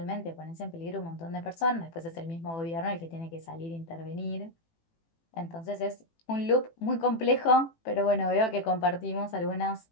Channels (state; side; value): late; right; 18 ms